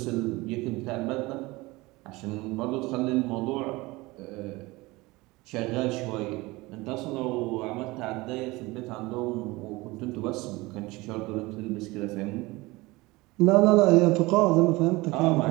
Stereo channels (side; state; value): left; quieter; 21.8 dB